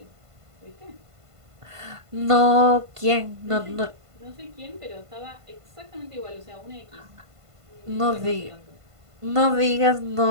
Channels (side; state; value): left; late; 1.5 ms